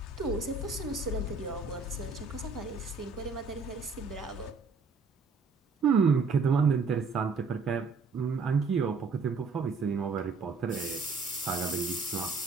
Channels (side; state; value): left; quieter; 4.4 dB